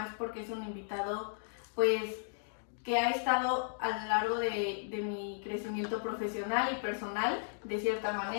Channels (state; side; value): silent; right; digital silence